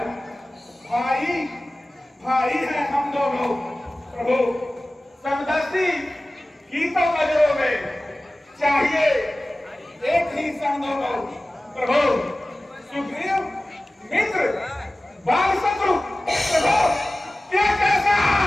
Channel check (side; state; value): both; normal; correlation 0.97